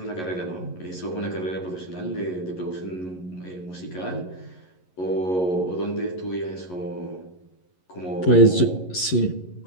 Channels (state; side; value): late; right; 11 ms